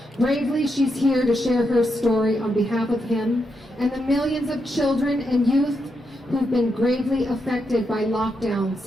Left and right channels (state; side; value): normal; both; correlation 0.83